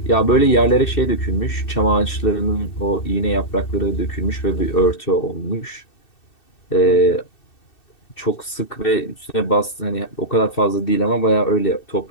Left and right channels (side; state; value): right; late; 2.6 ms